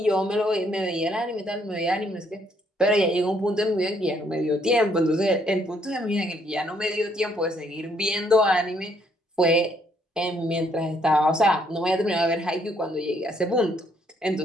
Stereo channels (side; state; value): both; normal; correlation 0.69